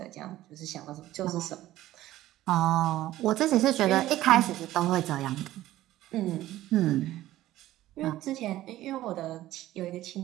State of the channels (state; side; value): quieter; left; 15.0 dB